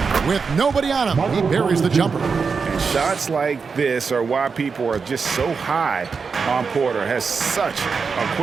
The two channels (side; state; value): left; quieter; 5.3 dB